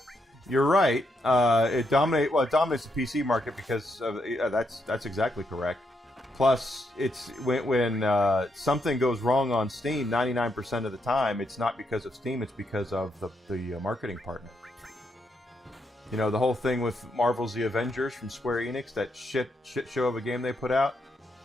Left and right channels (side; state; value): both; normal; correlation 0.79